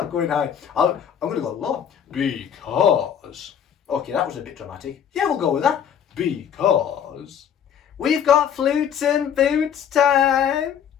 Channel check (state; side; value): quieter; right; 8.5 dB